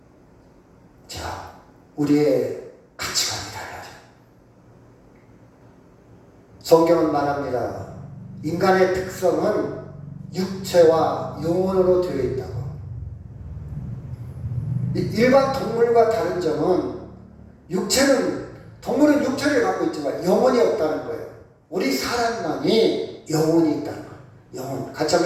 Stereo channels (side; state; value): both; identical; correlation 1.00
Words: 자, 우리의 가치관이 달라져요. 성경은 말합니다. 인간의 특성은 육체와 영혼으로 되어 있다고. 일반 동물과 다른 점은 동물은 육체를 갖고 있지만 영혼이 없다는 거예요. 우리 사람만이 영혼이 있다는 거예요. 영혼. 같이